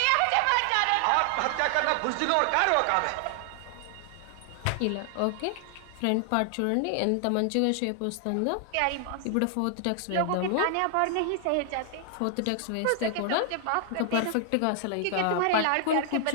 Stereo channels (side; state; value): both; different; correlation 0.00